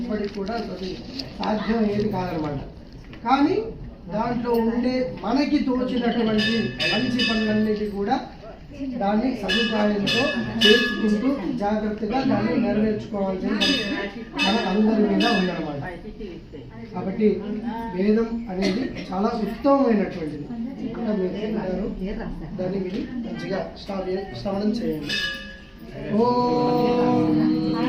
కూడా అది సాధ్యం ఏది కాదనమాట. కానీ దాంట్లో ఉండే మనకి తోచినటువంటి మంచి పనులన్నిటి కూడా దాన్ని సదుపాయంతో చేసుకుంటూ జాగ్రత్తగా దాన్ని నెరవేర్చుకోవాల్సిన మన అందరి మీద ఉందన్నమాట. కాబట్టి వేదం అనేది చాలా ఉత్తమమైనటువంటిది. ఇంకా మీరు దాన్ని మీరు మంచిగా శ్రవణం చేయండి.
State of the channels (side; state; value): both; identical; correlation 1.00